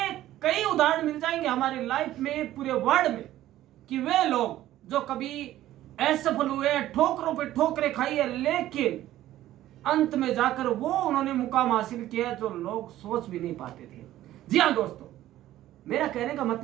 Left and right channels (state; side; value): quieter; left; 14.0 dB